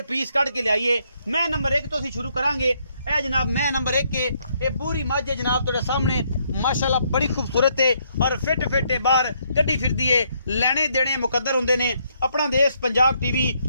पीस कट के लियाइए। मैं नंबर 1 तो असी शुरू करांगे। ए जनाब मैं नंबर 1 के ये पूरी मझ है जनाब तुहाडे सामने, माशाल्लाह बड़ी खूबसूरत है और फिट फिट बाहर कड्डी फिरदी है। लेने देने मुकद्दर होंदे ने। अपना देश पंजाब टीवी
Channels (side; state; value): both; inverted; correlation -0.72